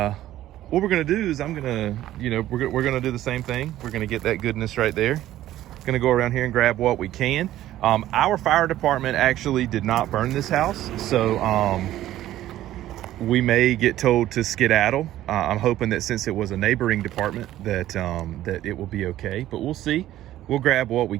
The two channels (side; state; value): left; quieter; 13.7 dB